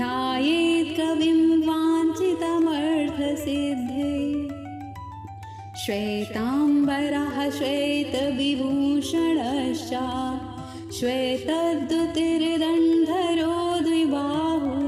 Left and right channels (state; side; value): identical; both; correlation 1.00